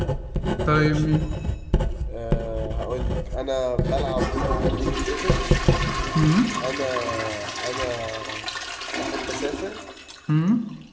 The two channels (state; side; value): identical; both; correlation 1.00